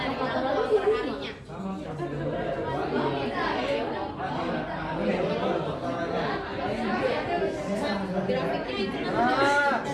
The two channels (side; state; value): both; identical; correlation 1.00